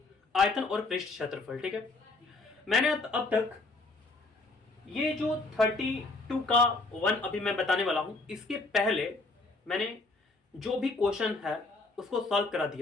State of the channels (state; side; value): quieter; right; 3.3 dB